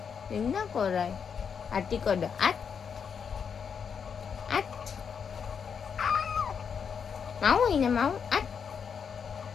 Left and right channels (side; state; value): right; quieter; 6.7 dB